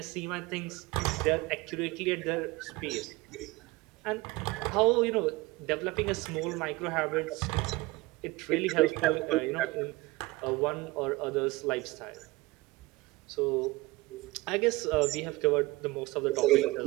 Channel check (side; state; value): left; quieter; 21.3 dB